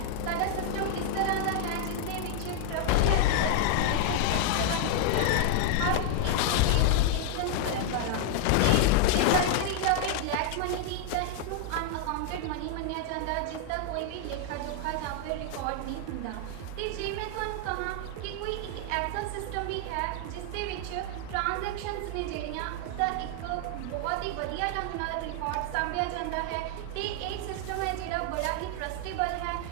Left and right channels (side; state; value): both; different; correlation 0.00